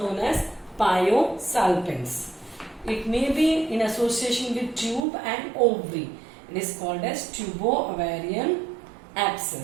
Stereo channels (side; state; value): left; drops out; at 5.1 s